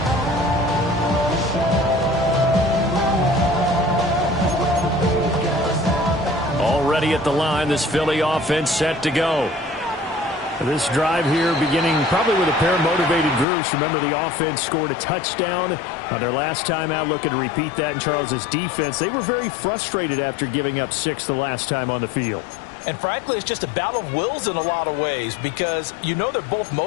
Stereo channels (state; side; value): drops out; right; at 13.5 s